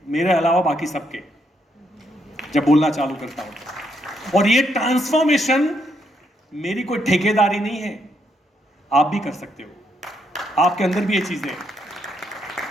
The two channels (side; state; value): both; normal; correlation 0.76